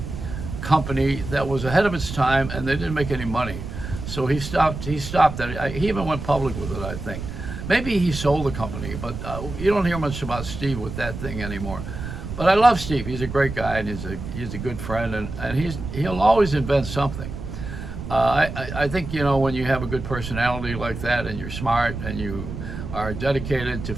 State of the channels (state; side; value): noise; right; rumble, 8 dB below the sound